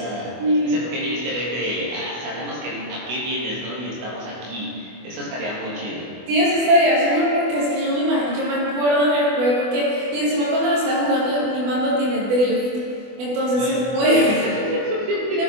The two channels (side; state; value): left; late; 24 ms